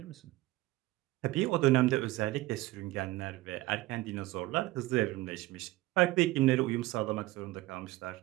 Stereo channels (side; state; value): left; quieter; 18.2 dB